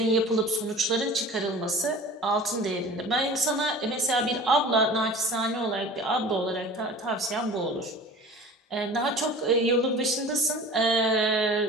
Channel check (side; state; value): both; normal; correlation 0.40